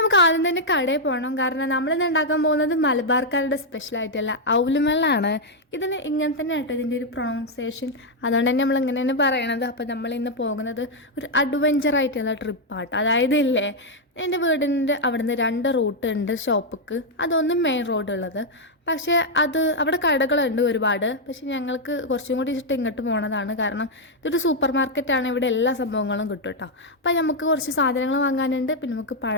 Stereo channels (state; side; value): normal; both; correlation -0.01